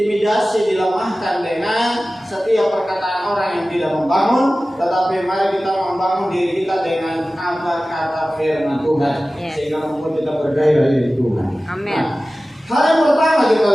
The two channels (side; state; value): both; normal; correlation 0.96